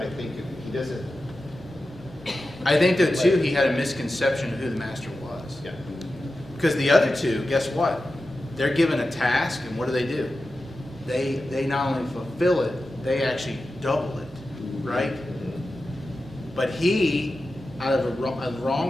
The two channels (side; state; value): both; normal; correlation 0.92